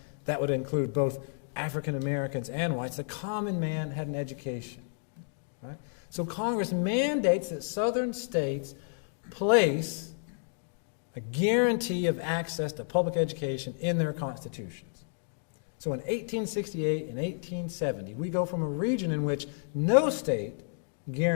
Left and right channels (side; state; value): right; silent; digital silence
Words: that would include both African Americans and whites, the common man had an education. Right? So Congress mandates that southern states place a guarantee of access to public education in their constitutions. So in 1868 and 1870, we go from a region in which no state